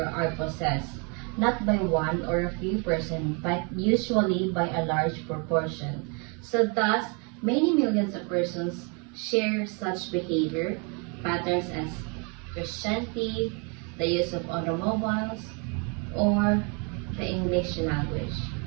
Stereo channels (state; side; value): quieter; left; 34.3 dB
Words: are possessed, not by one or a few persons, but usually by a large proportion. So thus, many millions of persons share such behavior patterns as Christianity, the use of automobiles, or the English language.